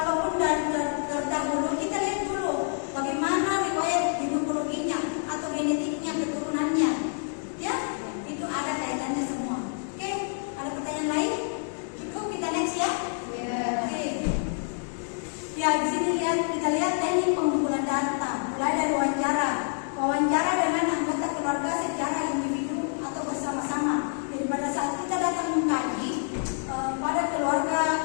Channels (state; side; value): silent; right; 59 dB below the other